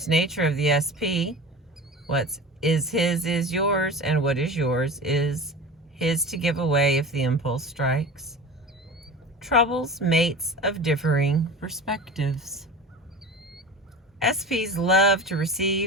nature of the SP, what is his is yours, and what is yours is his to give away if the impulse strikes, troubles mates of differing perspectives. SPs love to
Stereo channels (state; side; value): normal; both; correlation 0.34